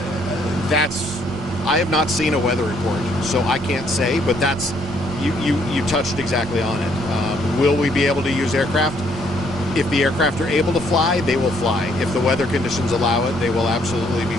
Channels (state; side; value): normal; both; correlation 0.68